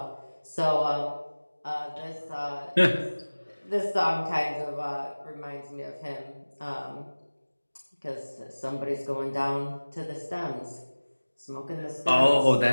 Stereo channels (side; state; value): both; inverted; correlation -1.00